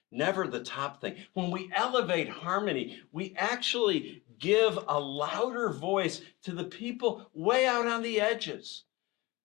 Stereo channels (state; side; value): quieter; right; 22.2 dB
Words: never the top thing. When we elevate harmony, we actually give a louder voice to the people way out on the edges,